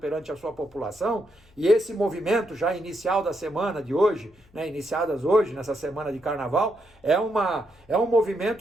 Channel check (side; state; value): left; noise; hum, 29 dB below the sound